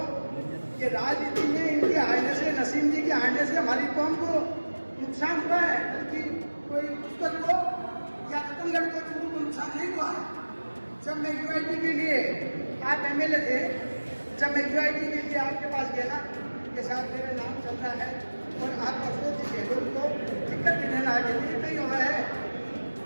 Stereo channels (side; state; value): both; inverted; correlation -1.00